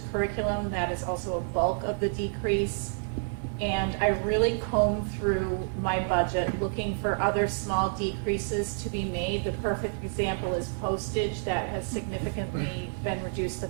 curriculum. That is also a bulk of the decrease. And I really combed through my budget looking for other small decreases to be made. The perfect example is postage that has significantly been reduced the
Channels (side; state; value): left; silent; 59 dB below the other